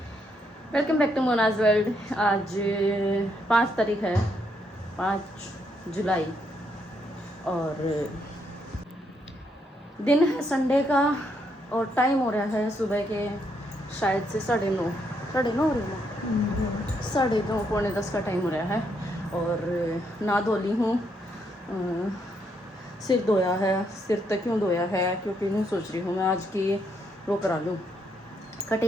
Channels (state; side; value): normal; both; correlation 0.76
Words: welcome back to Mona's world. आज 5 तारीख है, 5 जुलाई, और दिन है संडे का और टाइम हो रहा है सुबह के शायद से 9:30 हो रही है, 9:30 पौने 10 का टाइम हो रहा है। और ना धो ली हूँ, सिर धोया है। सिर तो क्यों धोया है, क्योंकि यूँ सोच रही हूँ मैं आज की वो करा लूँ,